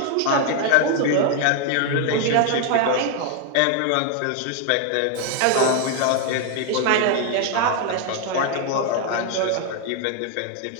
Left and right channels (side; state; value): both; different; correlation 0.00